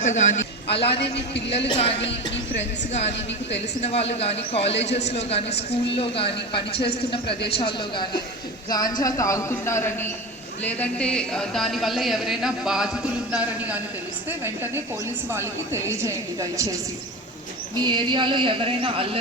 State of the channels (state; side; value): normal; both; correlation 0.26